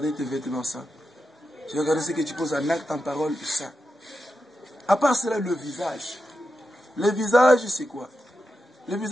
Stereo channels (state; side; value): normal; both; correlation 0.89